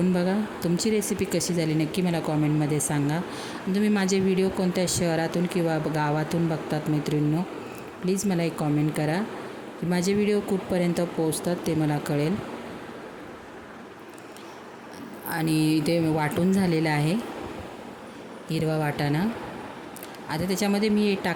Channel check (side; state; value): both; identical; correlation 1.00